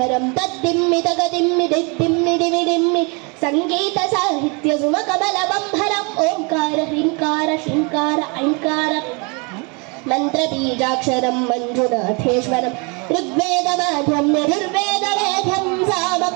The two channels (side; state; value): left; quieter; 31.8 dB